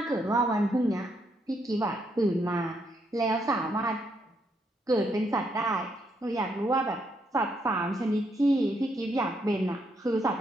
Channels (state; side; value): normal; both; correlation 0.76